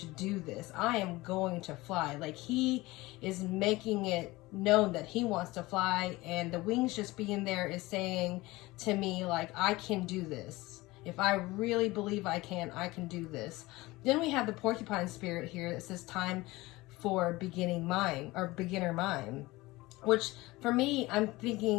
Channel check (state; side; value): quieter; right; 20.3 dB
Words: do this. I am going to fly. Like, he is making it known that he wants to fly, and the wings just being there is saying to me, like, I can do this. If I really believe I can do this. Then we have the porcupine spirit here that says time for beginning mind, or beginner mind, which for me, I'm